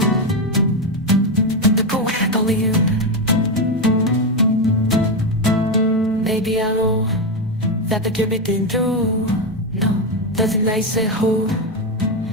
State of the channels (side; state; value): both; normal; correlation 0.08